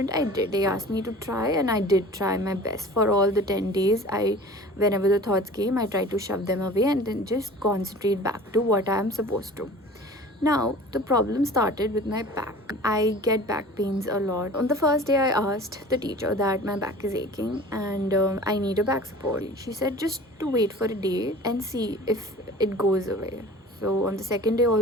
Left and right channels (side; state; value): both; normal; correlation 0.42